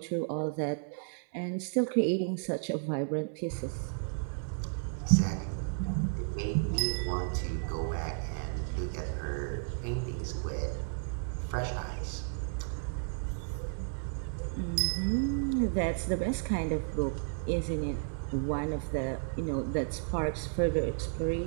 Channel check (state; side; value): silent; left; 56 dB below the other